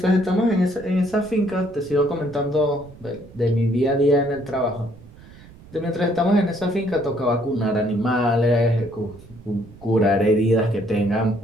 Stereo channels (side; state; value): right; noise; rumble, 21 dB below the sound